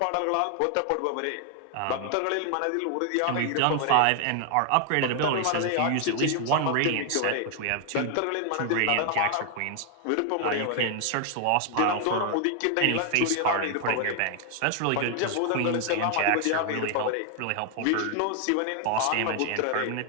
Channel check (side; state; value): both; different; correlation 0.00